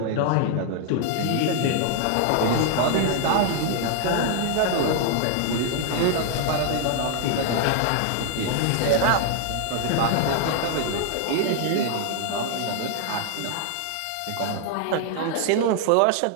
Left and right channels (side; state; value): both; different; correlation 0.00